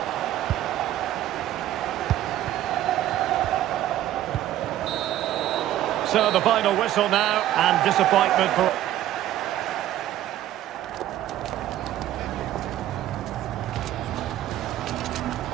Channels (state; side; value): quieter; left; 13.1 dB